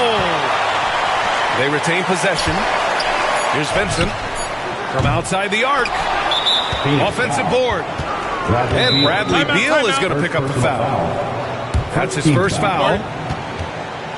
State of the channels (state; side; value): identical; both; correlation 1.00